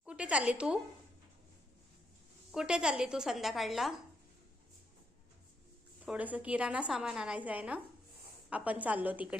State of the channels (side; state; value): both; normal; correlation 0.77